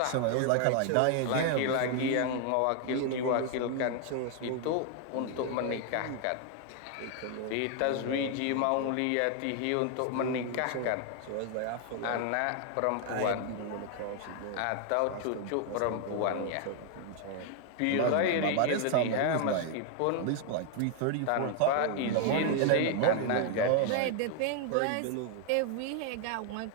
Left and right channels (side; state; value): both; different; correlation 0.00